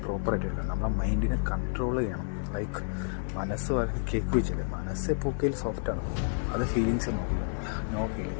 പ്രോപ്പറായിട്ട് എടുക്കണം. നമ്മളെ മൈൻഡിനെ കൺട്രോൾ ചെയ്യണം. ലൈക്ക് മനസ്സ് കേക്ക് വെച്ചില്ലേ, മനസ്സ് എപ്പോഴും സോഫ്റ്റാണ്. അത് ഫീലിങ്സ് നോക്കില്ല, നോ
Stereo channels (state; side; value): silent; right; digital silence